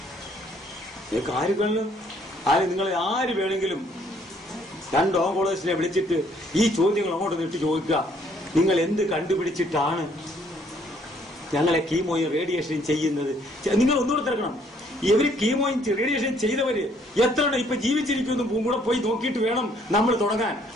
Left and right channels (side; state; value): both; normal; correlation 0.65